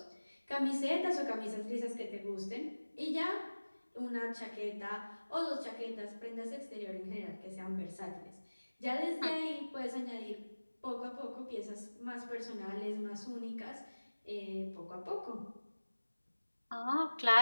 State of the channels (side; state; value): both; inverted; correlation -1.00